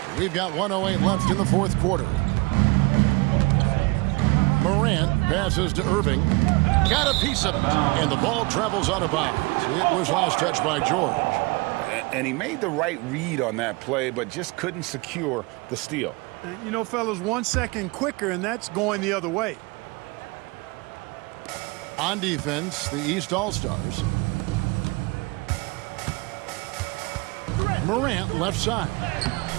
We've got 1:08 left in the fourth quarter. Morant passes to Irving. Got a piece of it, and the ball travels out of bounds. It was last touched by George. And he made the right read on that play, but just couldn't secure the steal. You know, fellas, 1 second quicker, and that's going the other way. On defense, the East All-Stars. Morant left side.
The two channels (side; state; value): left; quieter; 25.9 dB